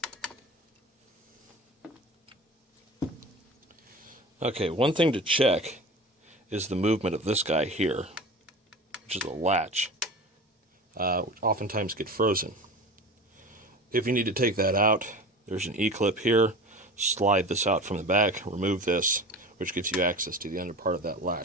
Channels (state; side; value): normal; both; correlation 0.34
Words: Okay, one thing to check is the movement of this guy here, which is a latch, which oftentimes get frozen. If you need to take that out, there's an E-clip here. Slide this out from the back, remove this, which gives you access to the under part of that